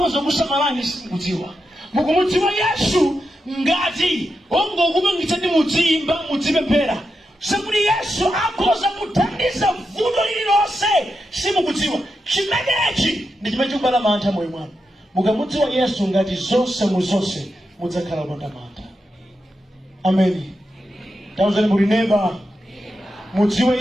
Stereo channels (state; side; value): normal; both; correlation 0.87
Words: kusamalani simudziwa. Mukumudziwa Yesu ngati ongokupangitsa ndi mudziyimba mudzipemphera zakuti Yesu akhoza kuthandiza vuto lililonse simukudziwa. Chimenechi ndi chimene chikubala mantha moyo mwanu. mukamudziwa Yesu ngati zonse muzonse mudzakhala opandamata. Ameni. Tauzani muli neighbor, mudziwe